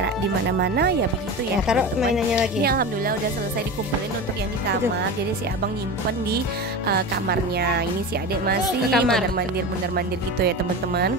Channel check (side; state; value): both; normal; correlation 0.27